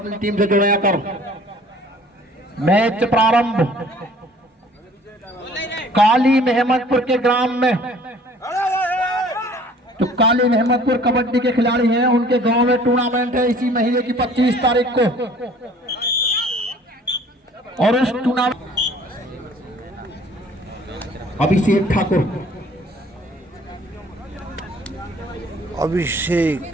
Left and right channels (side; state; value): both; normal; correlation 0.53